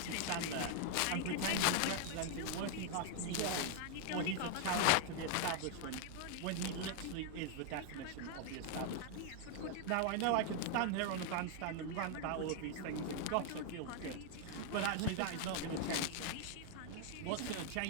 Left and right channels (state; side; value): different; both; correlation 0.00